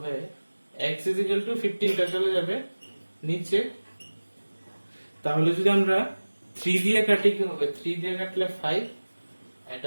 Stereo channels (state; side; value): inverted; both; correlation -1.00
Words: x is equal to 15 টা চলে যাবে নিচে। তাহলে যদি আমরা 3 দিয়ে কাটি কি হবে, 3 দিয়ে কাটলে 5,